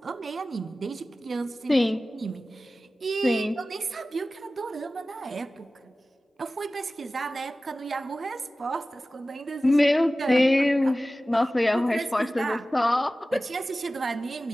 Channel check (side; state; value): both; normal; correlation 0.96